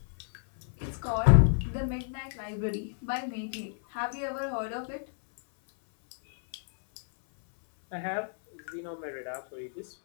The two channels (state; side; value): silent; right; 57 dB below the other